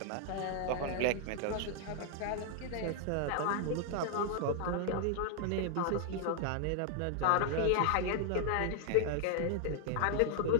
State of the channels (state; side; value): different; both; correlation 0.00